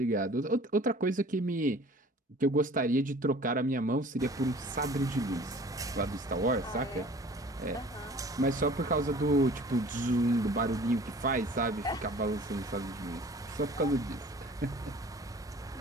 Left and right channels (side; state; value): both; normal; correlation 0.48